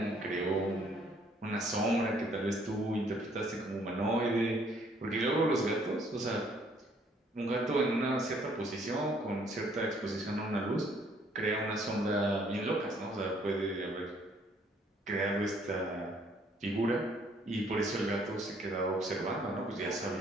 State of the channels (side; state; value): both; normal; correlation 0.63